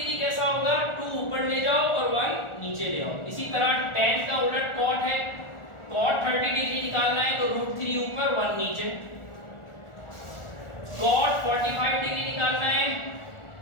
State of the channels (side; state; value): right; late; 1.4 ms